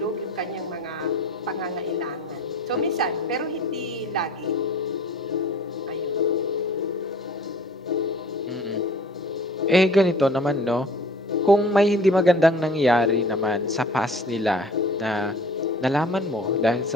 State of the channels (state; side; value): normal; both; correlation 0.47